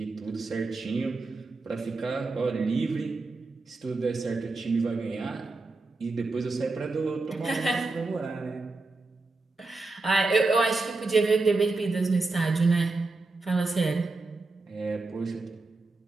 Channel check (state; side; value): quieter; left; 3.5 dB